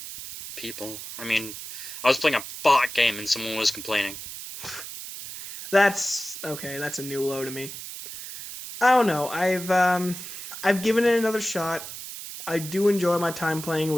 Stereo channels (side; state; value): right; noise; hiss, 10 dB below the sound